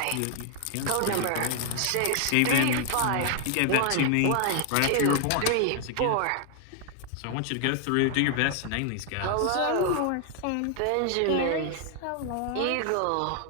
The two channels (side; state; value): both; different; correlation 0.00